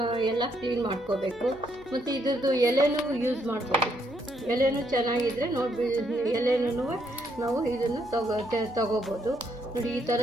ಎಲ್ಲ ಕ್ಲೀನ್ ಮಾಡ್ಕೋಬೇಕು. ಮತ್ತು ಇದ್ರದ್ದು ಎಲೆನೂ ಯೂಸ್ ಮಾಡ್ಬೋದು. ಎಲೆನೂ ಚೆನ್ನಾಗಿದ್ದರೆ ನೋಡಿ, ಎಲೆನೂ ನಾವು ಇದನ್ನು ತಗೋಬೋದು ನೋಡಿ. ಈ ಥರ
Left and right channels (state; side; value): normal; both; correlation 0.74